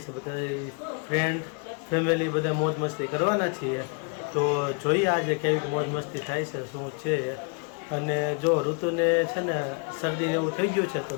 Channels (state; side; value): quieter; right; 37.2 dB